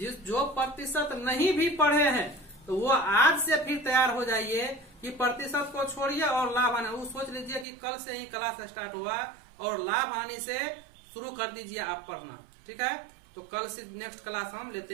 जो प्रतिशत नहीं भी पढ़े हैं तो वो आज से फिर तैयार हो जाइए कि प्रतिशत को छोड़िए और लाभ हानि, वो सोच लीजिए कि कल से ही क्लास स्टार्ट हुआ और लाभ हानि से शुरू कर दीजिए आप पढ़ना। ठीक है, तो कल से नेक्स्ट क्लास हम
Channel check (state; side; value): drops out; left; at 7.7 s